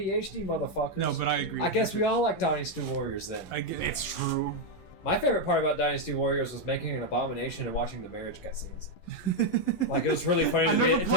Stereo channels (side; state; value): right; late; 11 ms